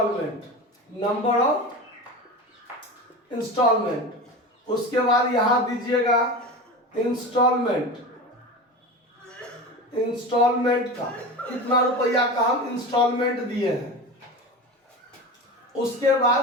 इंस्टॉलमेंट, उसके बाद यहां दीजिएगा इंस्टॉलमेंट का कितना रुपया का हम इंस्टॉलमेंट दिए हैं। उसके बाद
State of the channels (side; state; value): both; normal; correlation 0.28